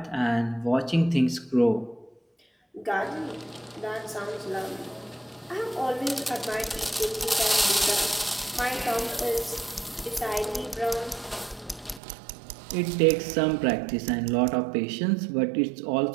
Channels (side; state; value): left; drops out; at 12.0 s